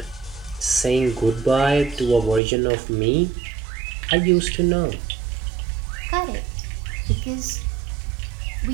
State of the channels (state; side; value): drops out; left; at 2.4 s